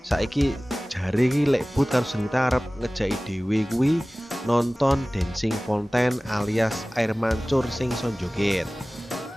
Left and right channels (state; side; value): normal; both; correlation 0.98